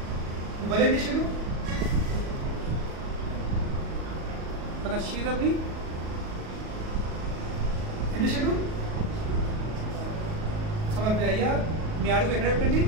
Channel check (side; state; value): left; late; 38 ms